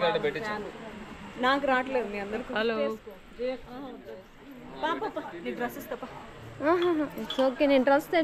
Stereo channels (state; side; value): identical; both; correlation 1.00